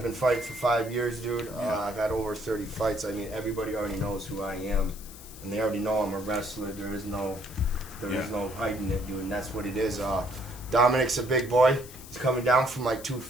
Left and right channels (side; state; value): left; noise; hiss, 16 dB below the sound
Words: been fighting for 5 years, dude. I've had over 30 fights. I mean, everybody already knows who I am, and they already know I'm a wrestler. There is no hiding it, dude, and that's what it is. Dominic's a big boy. He's coming down from like